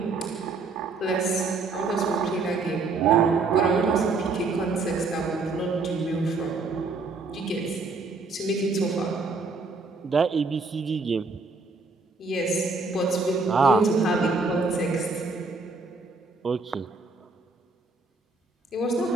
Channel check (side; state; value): left; quieter; 4.0 dB